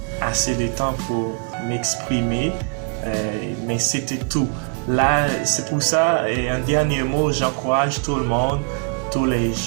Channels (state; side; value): quieter; left; 39.4 dB